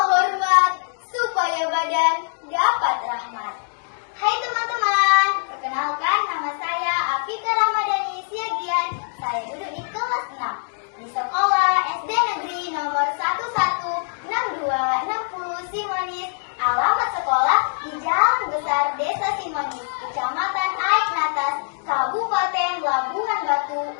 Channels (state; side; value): silent; right; digital silence